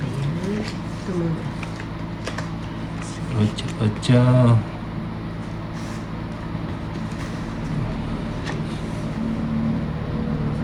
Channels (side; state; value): both; identical; correlation 1.00